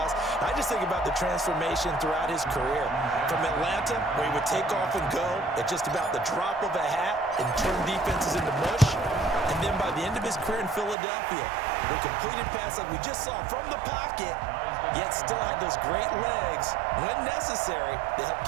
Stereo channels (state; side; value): drops out; left; at 11.0 s